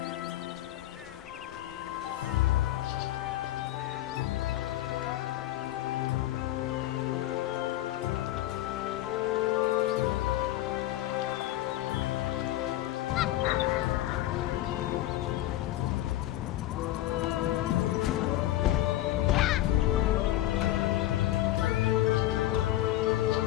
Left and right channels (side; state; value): right; quieter; 15.0 dB